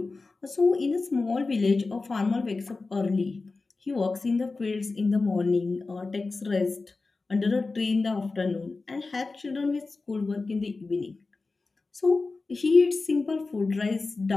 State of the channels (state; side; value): quieter; right; 3.7 dB